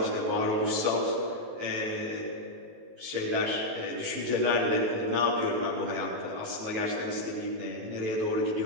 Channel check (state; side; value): late; left; 18 ms